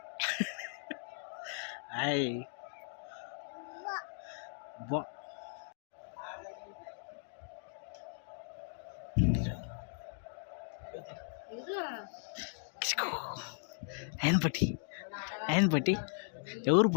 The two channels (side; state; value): right; silent; digital silence